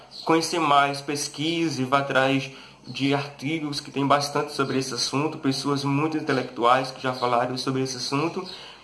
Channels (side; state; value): both; identical; correlation 1.00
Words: conhecer mais, pesquise, vá atrás de artigos que tem bastante sobre esse assunto, pessoas muito intelectuais que já falaram sobre esse assunto,